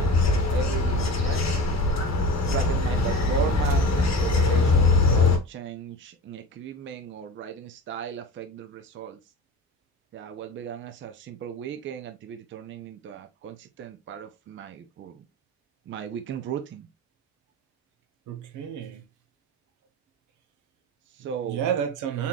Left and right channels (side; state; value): both; normal; correlation 0.31